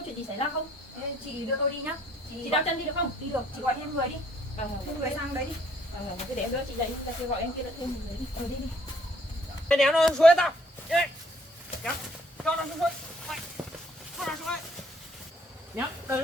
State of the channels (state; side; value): normal; both; correlation 0.64